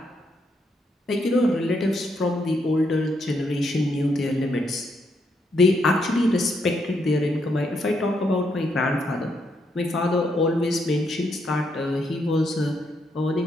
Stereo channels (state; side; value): normal; both; correlation 0.77